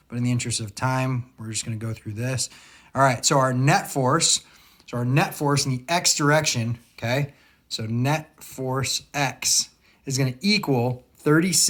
but in the interest of time, we're just going to go through this. All right, so our net force, in the x direction, okay, so net force x is going to equal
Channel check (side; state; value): both; identical; correlation 1.00